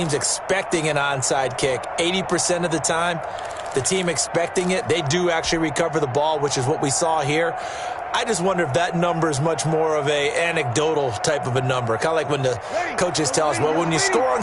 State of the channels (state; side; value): identical; both; correlation 1.00